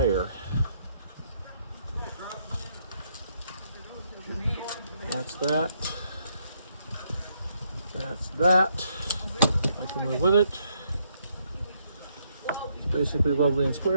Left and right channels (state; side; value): inverted; both; correlation -0.74